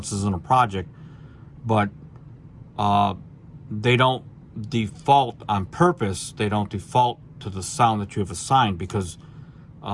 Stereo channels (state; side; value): identical; both; correlation 1.00